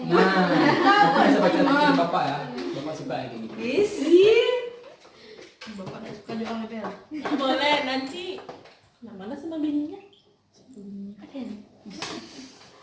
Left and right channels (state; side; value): identical; both; correlation 1.00